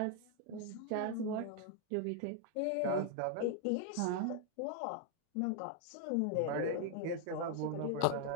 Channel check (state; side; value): different; both; correlation 0.00